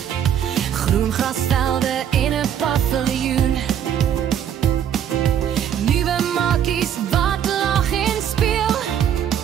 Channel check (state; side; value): quieter; left; 9.4 dB